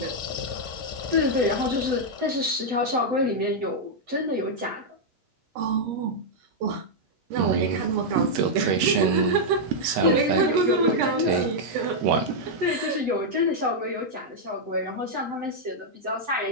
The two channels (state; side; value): late; left; 7.9 ms